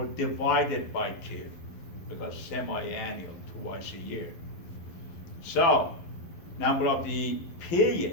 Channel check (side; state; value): right; late; 11 ms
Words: divided by 2, because semi-annual, twice a year. So, number of the